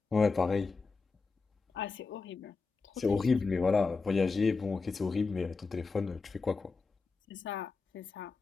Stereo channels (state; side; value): quieter; right; 4.3 dB